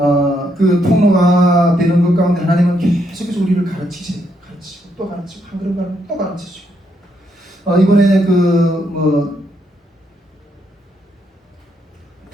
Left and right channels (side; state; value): both; normal; correlation 0.76